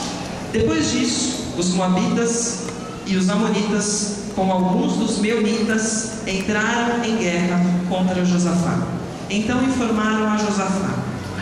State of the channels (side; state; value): both; identical; correlation 1.00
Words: Depois disso, os Moabitas e os Amonitas, com alguns dos Meunitas, entraram em guerra contra Josafá. Então informaram a Josafá: